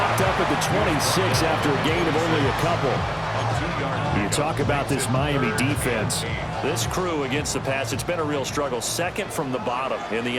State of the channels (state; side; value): identical; both; correlation 1.00